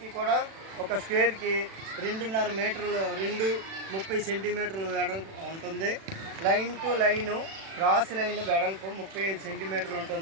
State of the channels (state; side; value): late; left; 36 ms